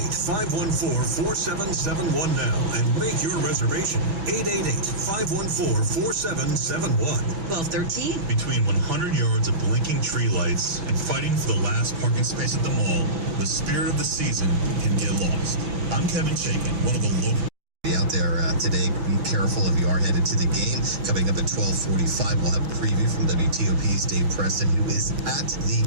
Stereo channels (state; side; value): late; left; 6.0 ms